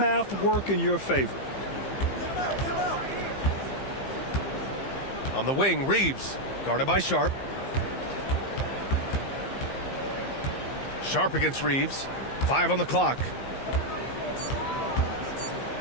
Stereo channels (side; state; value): right; late; 15 ms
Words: work in your favor. On the wing, Reeves. Guarded by Sharp. Sharp against Reeves. 5 on the clock.